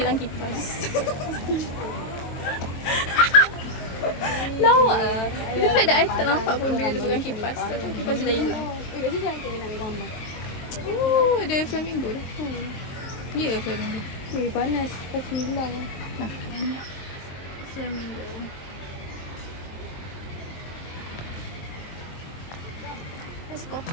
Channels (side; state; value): right; late; 23 ms